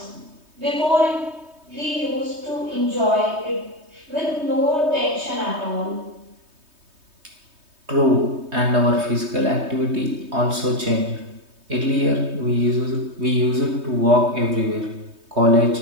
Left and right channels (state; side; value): late; left; 3.2 ms